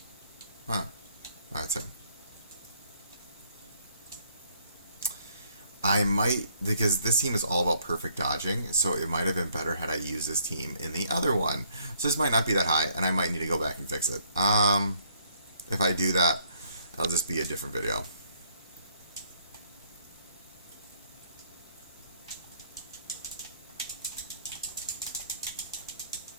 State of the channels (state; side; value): inverted; both; correlation -0.67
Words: Wow, that's him. I might, because this team is all about perfect dodging, so it might have been better had I used this team in the other one. So this might not be that high, and I might need to go back and fix it. If I do that, it'll just be a different video.